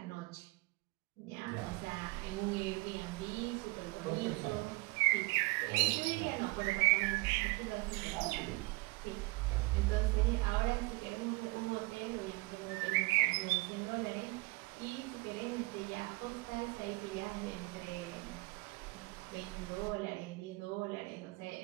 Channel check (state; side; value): quieter; left; 24.3 dB